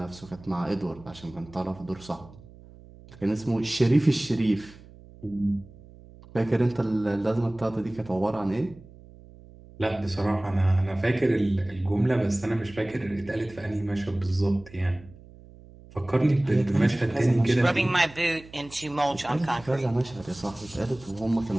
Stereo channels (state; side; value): noise; right; hum, 21 dB below the sound